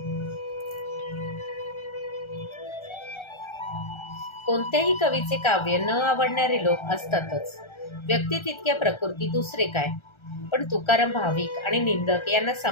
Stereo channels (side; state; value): right; late; 1.3 ms